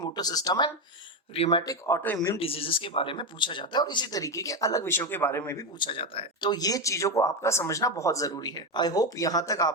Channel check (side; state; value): both; normal; correlation 0.12